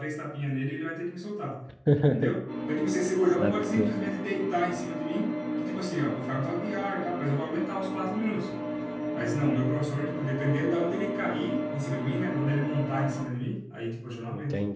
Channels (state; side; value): identical; both; correlation 1.00